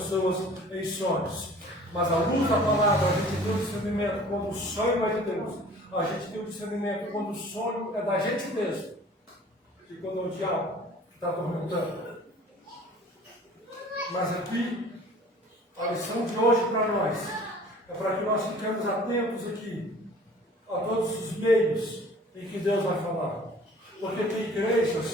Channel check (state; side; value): normal; both; correlation 0.48